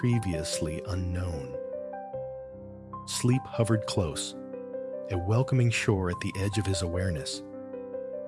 unknown. Sleep hovered close, a welcoming shore at the edge of his awareness.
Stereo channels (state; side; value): identical; both; correlation 1.00